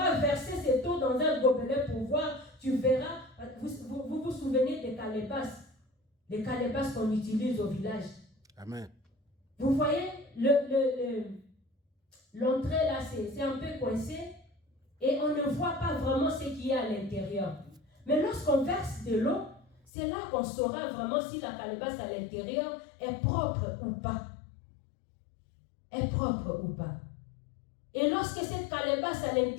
verser cette eau dans un gobelet pour voir, tu verras, vous souvenez des calebasses. Les calebasses qu'on utilise au village. Amen. Vous voyez, l'entrée là, c'est un peu coincé et on ne voit pas vraiment ce qu'il y a à l'intérieur. Mais lorsqu'on verse de l'eau, c'est là qu'on saura vraiment si la calebasse à l'intérieur est propre ou pas. Est propre ou pas. Et lorsque cette calebasse à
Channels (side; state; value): right; drops out; at 19.9 s